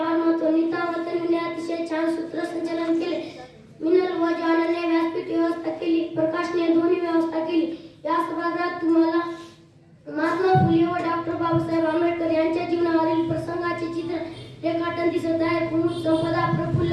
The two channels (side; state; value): both; identical; correlation 1.00